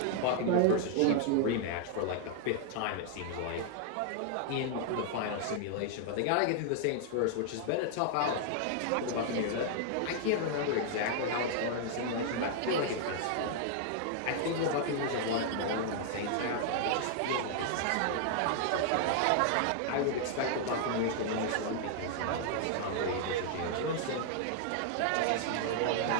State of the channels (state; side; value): different; both; correlation 0.00